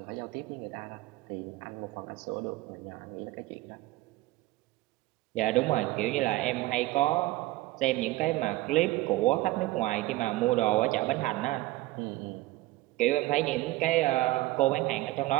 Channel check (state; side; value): quieter; left; 18.2 dB